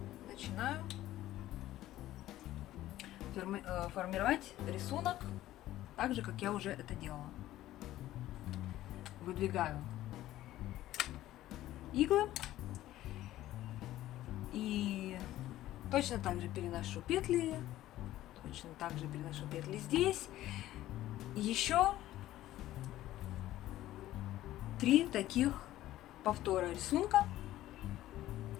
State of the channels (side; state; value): right; quieter; 14.5 dB